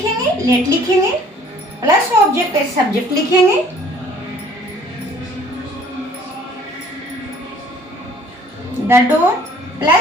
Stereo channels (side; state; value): both; normal; correlation 0.55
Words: लेट लिखेंगे प्लस ऑब्जेक्ट एज सब्जेक्ट लिखेंगे, द डोर